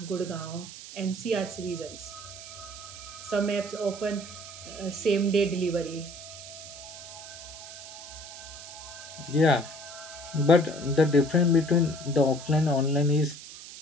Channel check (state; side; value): noise; right; hiss, 13 dB below the sound